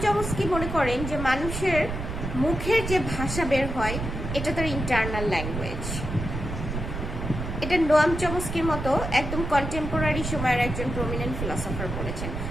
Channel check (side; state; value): right; noise; rumble, 5 dB below the sound